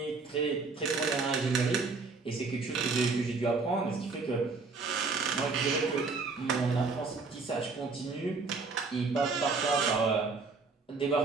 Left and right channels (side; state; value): left; quieter; 4.2 dB